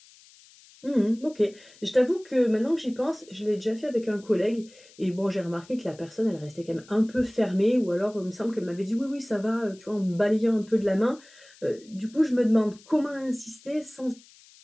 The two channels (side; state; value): left; noise; hiss, 25 dB below the sound